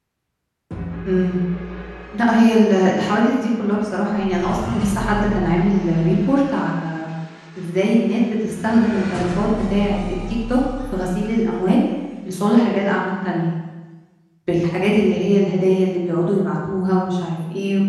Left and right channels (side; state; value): both; identical; correlation 1.00